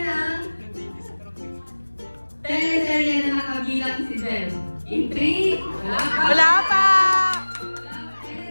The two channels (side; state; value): both; inverted; correlation -1.00